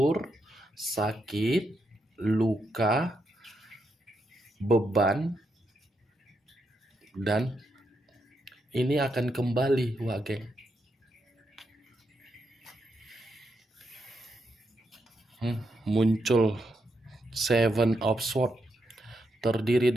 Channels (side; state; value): both; normal; correlation 0.82